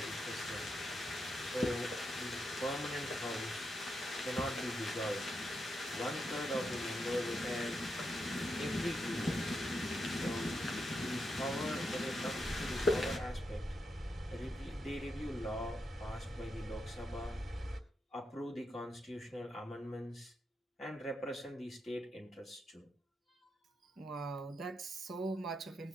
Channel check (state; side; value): normal; both; correlation 0.84